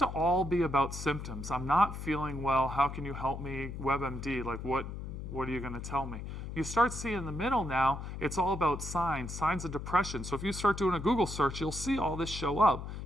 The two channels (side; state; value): left; noise; hum, 7 dB below the sound